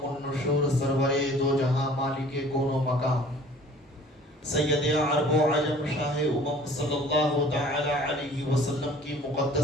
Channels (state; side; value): normal; both; correlation 0.50